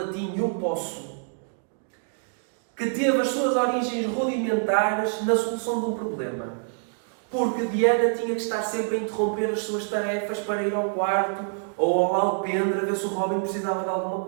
eu posso, que teve as suas origens rudimentares na solução de um problema. Porque Diana tinha que estar sempre a interromper as suas tarefas para ir ao quarto ou ao alpendre a ver se o Robin precisava de alguma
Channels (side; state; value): left; silent; digital silence